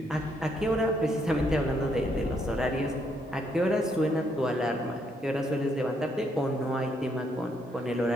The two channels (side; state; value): both; normal; correlation 0.73